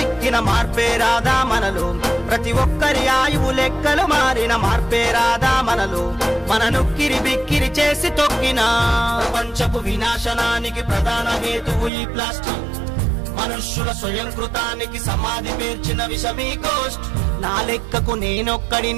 మార్పే రాదా మనలో, ప్రతి ఒక్కరి ఆయువు లెక్కలు మారిన మార్పే రాదా మనలో, మన నొక్కిరి బిక్కిరి చేసి తొక్కిన ప్రపంచపు వినాశనానికి ప్రధాన హేతువు ఈ ప్లాస్టిక్. మనుష్యుల స్వయంకృతానికి సమాధి పేర్చిన విషమీ కోస్ట్. నా లెక్కకు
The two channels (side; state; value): left; drops out; at 11.9 s